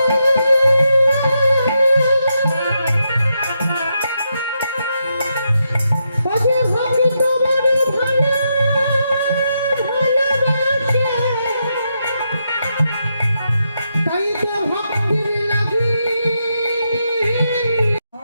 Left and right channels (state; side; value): inverted; both; correlation -0.83